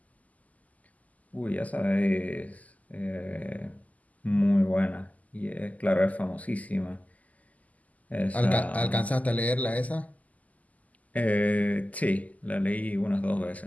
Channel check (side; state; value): right; late; 0.075 ms